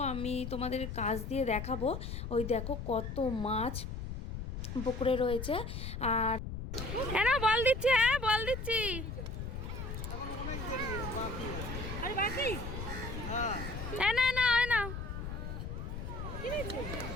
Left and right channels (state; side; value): noise; left; rumble, 6 dB below the sound